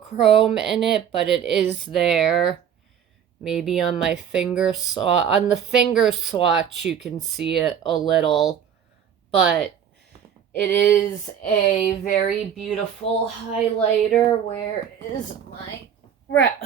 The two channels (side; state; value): left; quieter; 8.5 dB